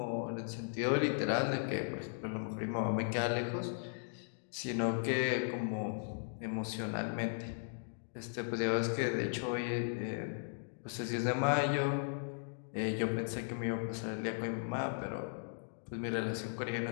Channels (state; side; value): silent; right; digital silence